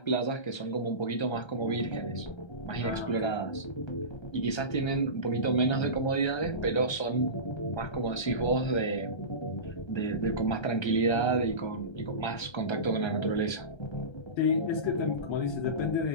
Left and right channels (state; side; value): late; right; 1.3 ms